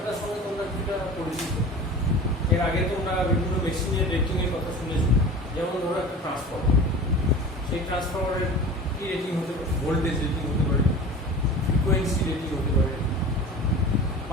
সঙ্গে তোমরা কিছুটা পরিচিত। এর আগে তোমরা বিভিন্ন মেশিনের রেটিংয়ের কথা শুনেছো। যেমন ধরো একটা ট্রান্সফর্মার, সেই ট্রান্সফর্মারের কি রেটিং হতে পারে? ভোল্টেজ রেটিং হতে পারে, ফ্রিকোয়েন্সি রেটিং হতে পারে,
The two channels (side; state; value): both; normal; correlation 0.37